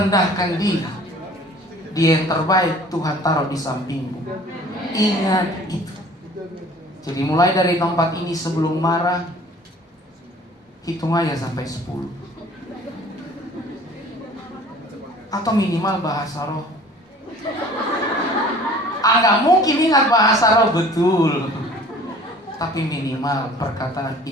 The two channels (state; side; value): normal; both; correlation 0.49